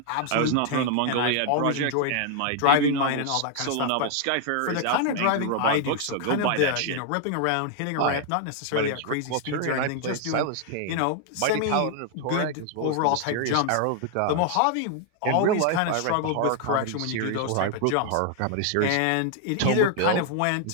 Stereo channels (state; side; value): different; both; correlation 0.00